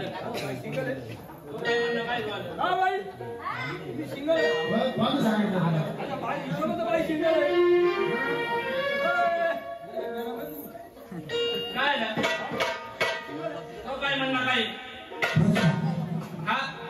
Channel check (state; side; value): identical; both; correlation 1.00